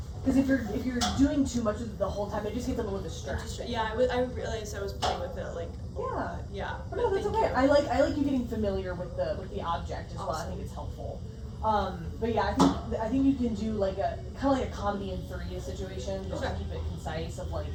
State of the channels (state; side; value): identical; both; correlation 1.00